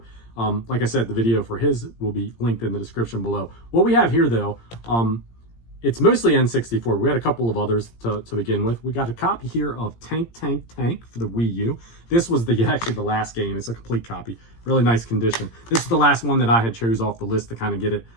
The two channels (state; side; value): late; right; 17 ms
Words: like I said, the video for his will be linked in the description below. What we have here, though, it's mostly N64. We had a couple of others to begin with. We got a copy here of Tank for the Wii U. This was actually the last game. It's a complete copy. Really nice condition. This is the last one that I had chose off the list to kind of get it